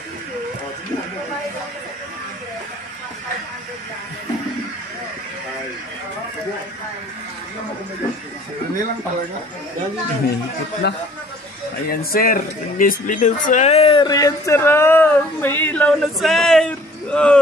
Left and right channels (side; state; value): both; normal; correlation 0.54